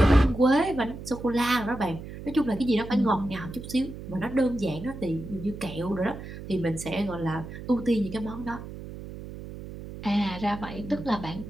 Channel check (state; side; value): noise; right; hum, 11 dB below the sound